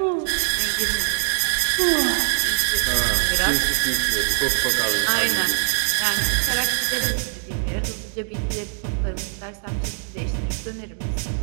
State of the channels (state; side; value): silent; left; digital silence